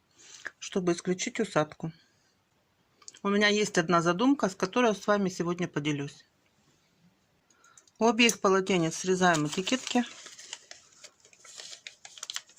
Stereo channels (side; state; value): both; identical; correlation 1.00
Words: чтобы исключить усадку. У меня есть одна задумка, с которой я с вами сегодня поделюсь. У обеих полотенец срезаем этикетки.